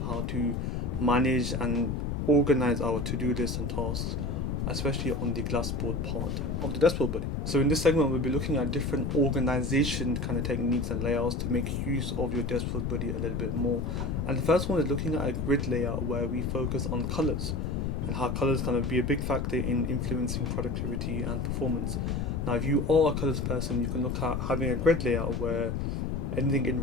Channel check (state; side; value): noise; left; rumble, 1 dB below the sound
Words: how to manage and organize our to-do list and tasks, especially on the glassboard part of the deskboard buddy. So in this segment, we'll be looking at different organization kind of techniques and layouts to make use of your deskboard buddy a little bit more. And the first one is looking at a grid layout where we focus on colors and how colors kind of be a big factor in influencing productivity and performance. Now, if you are a colors person, you can look at having a grid layout where anything in